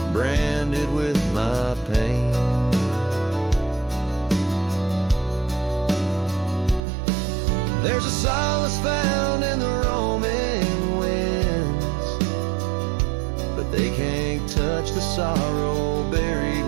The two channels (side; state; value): left; drops out; at 6.8 s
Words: branded with my pain. There's a solace found in the roaming winds, but they can't touch the sorrow buried